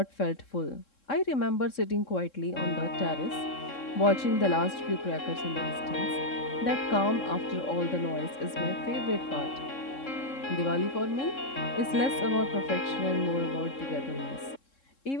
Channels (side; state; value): right; late; 3.7 ms